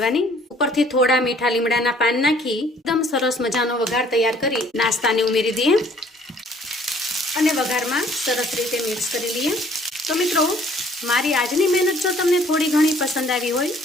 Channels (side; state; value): both; normal; correlation 0.58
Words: ઉપરથી થોડા મીઠા લીમડાના પાન નાખી એકદમ સરસ મજાનો વઘાર તૈયાર કરી નાસ્તાને ઉમેરી દઈએ અને વઘારમાં સરસ રીતે મિક્સ કરી લઈએ. તો મિત્રો, મારી આજની મહેનત જો તમને થોડી ઘણી પસંદ આવી હોય